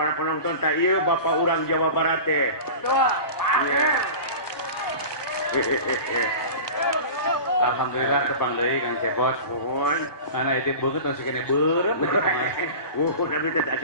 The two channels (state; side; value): late; right; 1.2 ms